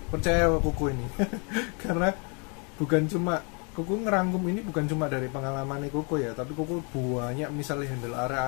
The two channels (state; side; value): quieter; right; 35.1 dB